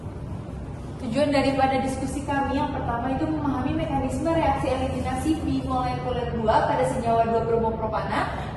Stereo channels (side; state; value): both; identical; correlation 1.00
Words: Tujuan daripada diskusi kami yang pertama itu memahami mekanisme reaksi eliminasi bimolekuler 2 pada senyawa 2-bromopropana.